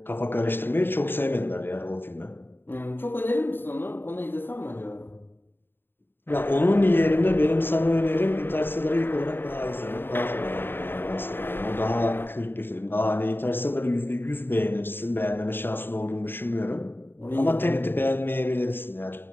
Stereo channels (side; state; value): right; late; 0.10 ms